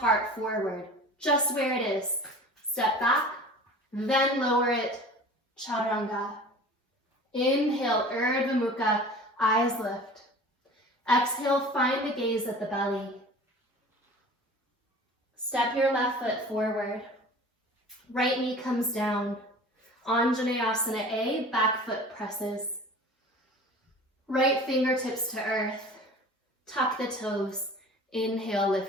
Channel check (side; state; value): both; normal; correlation 0.41